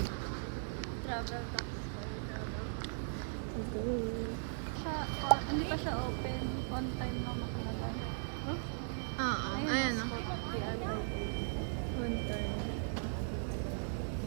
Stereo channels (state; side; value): silent; left; digital silence